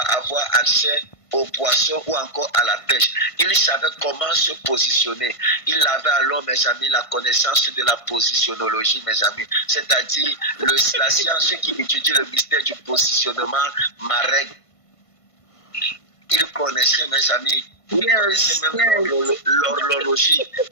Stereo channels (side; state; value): right; late; 1.5 ms